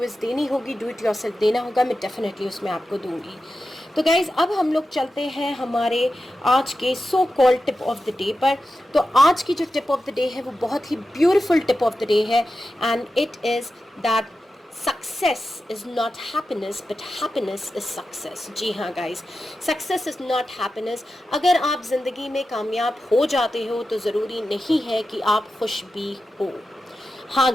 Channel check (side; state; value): both; normal; correlation 0.92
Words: देनी होगी, डू इट योरसेल्फ देना होगा, मैं डेफिनेटली उसमें आपको दूंगी। तो गाइज़ अब हम लोग चलते हैं हमारे आज के so called tip of the day पर। तो आज की जो टिप ऑफ द डे है वो बहुत ही beautiful tip of the day है, and it is that success is not happiness but happiness is success. जी हाँ guys, success is not happiness. अगर आप ज़िंदगी में कामयाब हो जाते हो तो ज़रूरी नहीं है कि आप खुश भी हो। हाँ